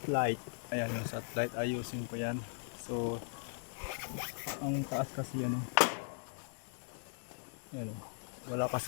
Ayan yung satellite, ayusin ko yan. So ang taas kasi yan ayan, wala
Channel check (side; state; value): right; silent; digital silence